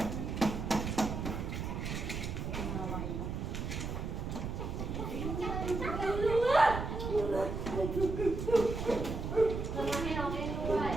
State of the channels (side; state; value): right; noise; rumble, 4 dB below the sound